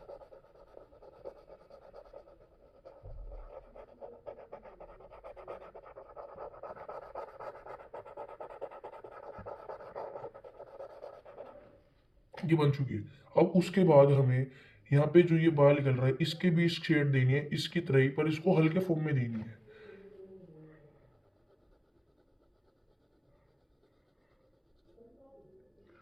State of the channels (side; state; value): both; identical; correlation 1.00